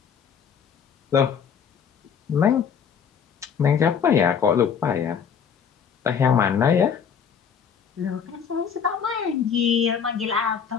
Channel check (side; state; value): right; quieter; 7.2 dB